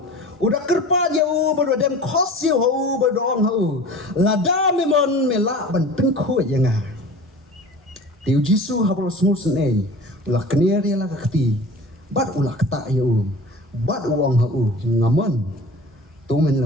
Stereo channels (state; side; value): normal; both; correlation 0.39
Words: udah kerpa jauh berdua kos jauh berdoang hau lada memon melak ban pengkut yang ah tiu jisu habro smus nei ulah kenir ya lah kati bat ulah kata jauh bat uang hau ngaman tu men